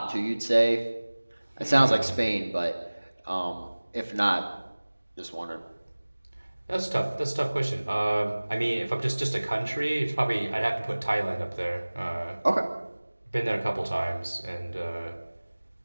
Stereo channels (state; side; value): inverted; both; correlation -1.00